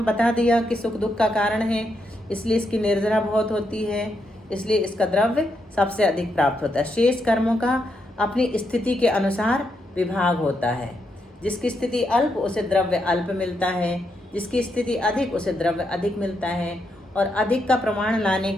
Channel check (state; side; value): normal; both; correlation 0.81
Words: बता दिया कि सुख दुख का कारण है, इसलिए इसकी निर्जरा बहुत होती है, इसलिए इसका द्रव्य सबसे अधिक प्राप्त होता है। शेष कर्मों का अपनी स्थिति के अनुसार विभाग होता है। जिसकी स्थिति अल्प उसे द्रव्य अल्प मिलता है, जिसकी स्थिति अधिक उसे द्रव्य अधिक मिलता है। और अधिक का प्रमाण लाने